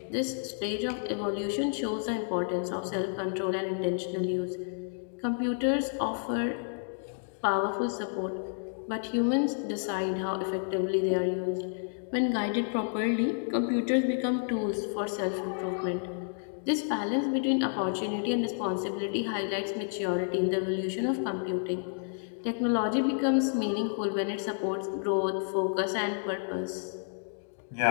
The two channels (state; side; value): silent; right; digital silence